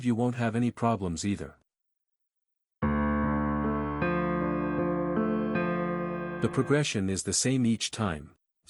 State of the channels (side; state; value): both; identical; correlation 1.00